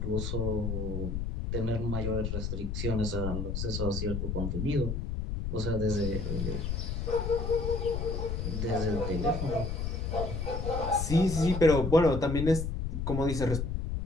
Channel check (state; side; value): noise; left; rumble, 2 dB below the sound